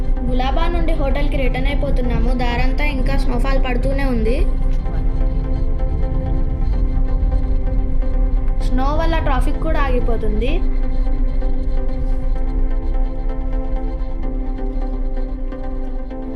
గులాబా నుండి హోటల్కి రిటర్న్ అయిపోతున్నాము. దారంతా ఇంకా స్నోఫాల్ పడుతూనే ఉంది. స్నో వల్ల ట్రాఫిక్ కూడా ఆగిపోతుంది.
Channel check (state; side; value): identical; both; correlation 1.00